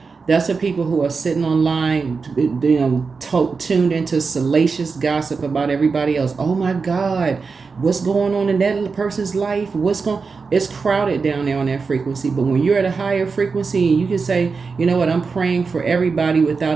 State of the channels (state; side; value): quieter; left; 4.8 dB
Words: That's for people who are sitting online, tuned into salacious gossip about everybody else. Oh my God, what's going on in that person's life? It's crowded down there on that frequency. But when you're at a higher frequency and you can say, you know what, I'm praying for everybody